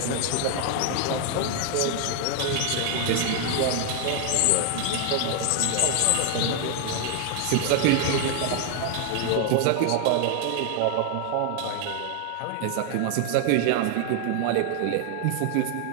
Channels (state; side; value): different; both; correlation 0.00